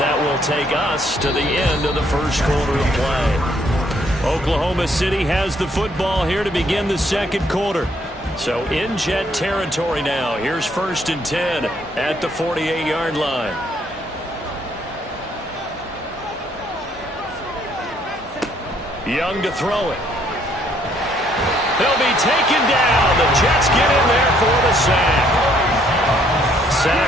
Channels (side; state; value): both; normal; correlation 0.67